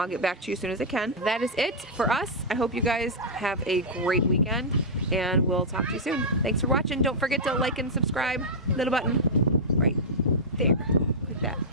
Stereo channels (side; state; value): both; normal; correlation -0.08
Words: get back to you as soon as I can. That is it for us. I hope you guys have a great weekend and we'll talk to you soon. Thanks for watching. Don't forget to like and subscribe. Little button right there. Click that.